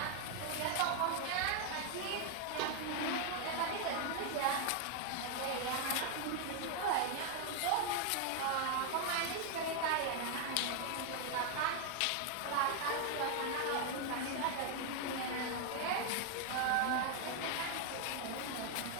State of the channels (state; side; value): different; both; correlation 0.01